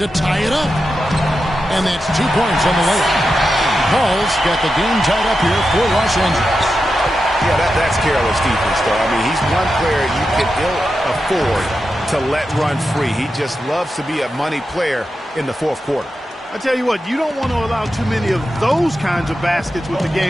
tie it up. And that's 2 points on the layup. Paul's got the game tied up here for Los Angeles. Yeah, that's careless defense, though. I mean, he's one player you can ill afford to let run free. He just loves to be a money player in the fourth quarter. I tell you what, you don't want to allow too many of those kinds of baskets with the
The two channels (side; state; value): both; normal; correlation 0.89